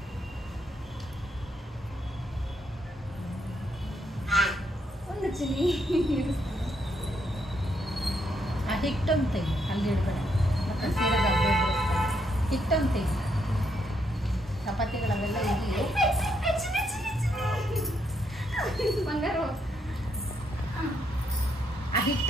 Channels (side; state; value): both; normal; correlation 0.76